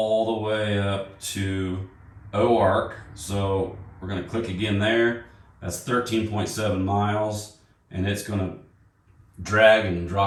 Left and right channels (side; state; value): both; identical; correlation 1.00